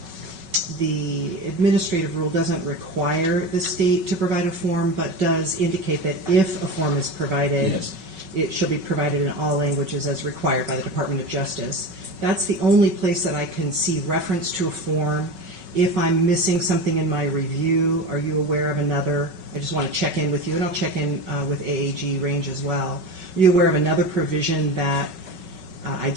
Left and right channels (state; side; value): late; left; 5.3 ms